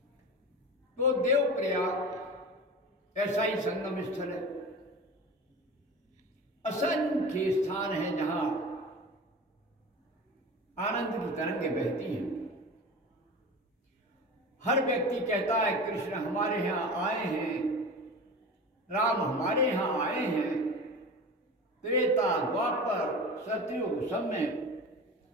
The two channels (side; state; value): both; normal; correlation 0.33